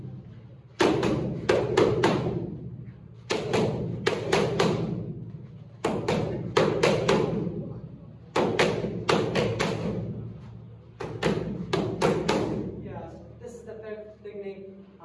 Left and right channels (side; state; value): both; identical; correlation 1.00